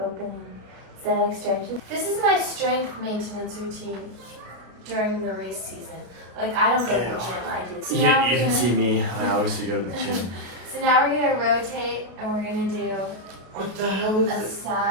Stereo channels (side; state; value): left; late; 33 ms